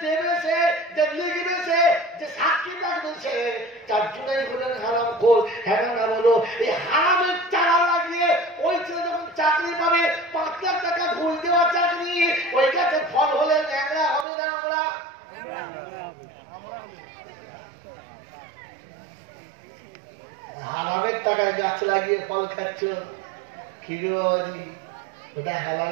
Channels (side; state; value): left; drops out; at 14.2 s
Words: দেবেছে, যে লিখবেছে, যে সাক্ষী লাগবেছে, 4 জনেই হলেন হারাম খোর। হ্যাঁ না বলো, এই হারামের চারা লাগিয়ে ওই ছেলে যখন চাকরি পাবে, 5 লাখ টাকা ঘুষ দেওয়া চাকরি, ওই গাছে ফল হলে ন্যাংরা হবে না? আমরা হারামের টাকায় গাছ লাগিয়ে ফল খাচ্ছ, খিরি ওটা